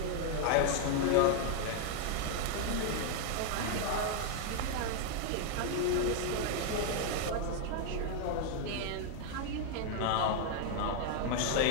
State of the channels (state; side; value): different; both; correlation 0.00